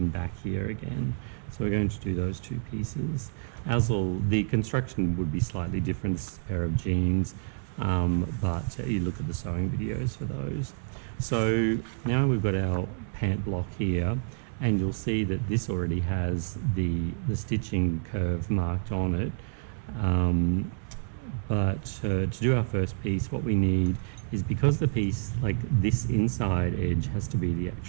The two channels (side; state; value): left; silent; digital silence